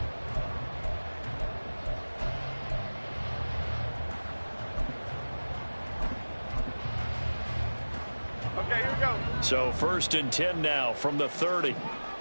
Okay, here we go. So 1st and 10 now from the 30.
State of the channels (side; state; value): both; inverted; correlation -1.00